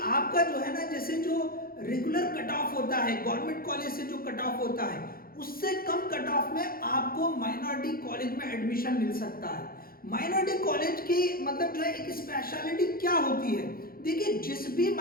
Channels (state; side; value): late; right; 0.43 ms